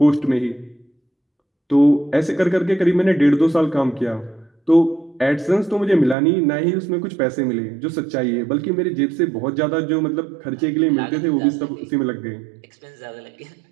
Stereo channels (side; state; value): left; drops out; at 6.2 s